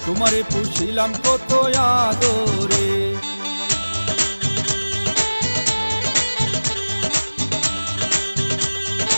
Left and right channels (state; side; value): inverted; both; correlation -1.00